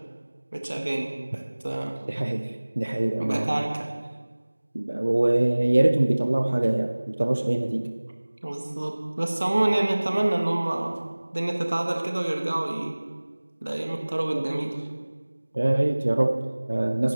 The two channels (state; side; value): inverted; both; correlation -1.00